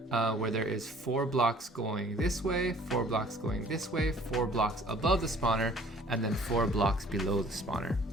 where there is 4 blocks going this way, 4 blocks going this way, 4 blocks above the spawner, and then 4 blocks below the spawner.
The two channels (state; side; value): normal; both; correlation 0.54